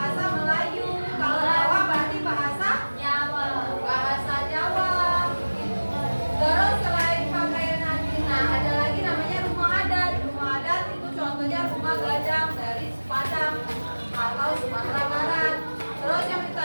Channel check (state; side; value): inverted; both; correlation -1.00